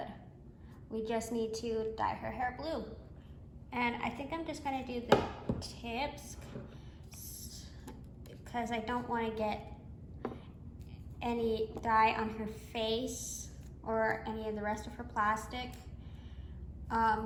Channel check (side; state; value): both; identical; correlation 1.00